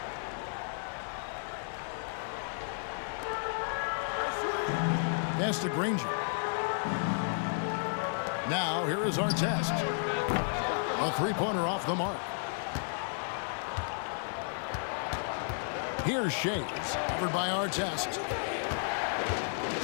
Pass to Granger. Now, here is Artest. A three-pointer off the mark. Here's Shays, covered by Artest.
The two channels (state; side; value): silent; right; 56 dB below the other